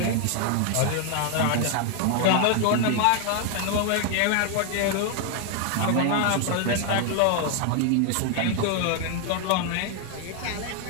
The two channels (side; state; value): both; different; correlation 0.00